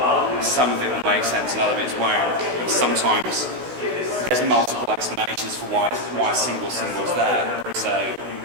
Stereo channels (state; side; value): late; left; 16 ms